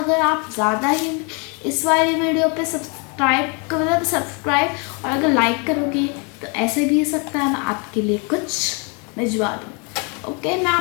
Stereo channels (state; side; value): quieter; right; 34.2 dB